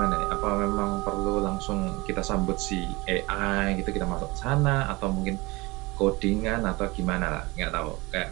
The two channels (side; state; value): left; quieter; 23.4 dB